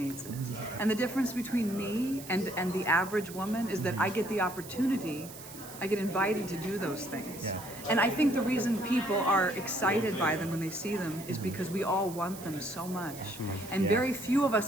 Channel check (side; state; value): right; noise; hiss, 15 dB below the sound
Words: it. And the difference between me and the average woman is that I get the opportunity, I get invited to do those things. Yeah. And I think the reason people are excited by them when they see them is because we all want them so much. And very few of